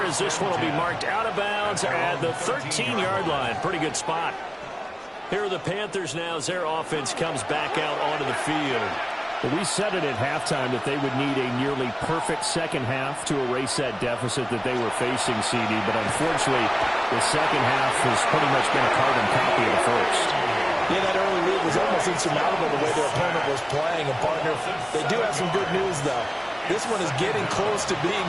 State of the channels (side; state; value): both; identical; correlation 1.00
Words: as this one will be marked out of bounds at the 13-yard line. Pretty good spot. Here are the Panthers now as their offense comes back out onto the field. Well, we said it at halftime that they would need a nearly perfect second half to erase that deficit that they were facing, CD. But unfortunately, the second half has pretty much been a carbon copy of the first. Yeah, that early lead was almost insurmountable the way their opponent was playing. And, partner, they do have some good news, though. This one is getting close to being